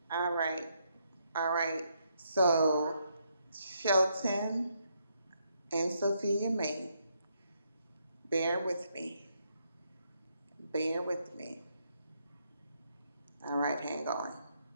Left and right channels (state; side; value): inverted; both; correlation -0.76